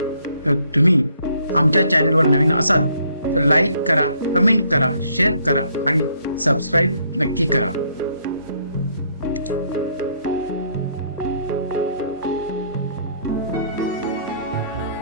तर तुम्ही आमच्या चॅनलवर नवीन असाल तर लाईक करा, कमेंट करा, शेअर करा आणि सबस्क्राईब नक्की करा.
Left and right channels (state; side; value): inverted; both; correlation -0.68